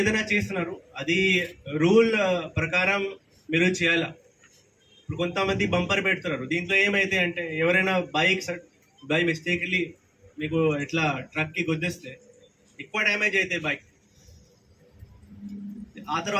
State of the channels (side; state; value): both; identical; correlation 1.00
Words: ఏదైనా చేస్తున్నారు అది రూల్ ప్రకారం మీరు చేయాలా. ఇప్పుడు కొంతమంది బంపర్ పెడుతున్నారు, దీంట్లో ఏమైతే అంటే ఎవరైనా బై మిస్టేక్లీ మీకు ఇట్లా ట్రక్కి గుద్దేస్తే ఎక్కువ డ్యామేజ్ అవుతాయి బైక్. ఆ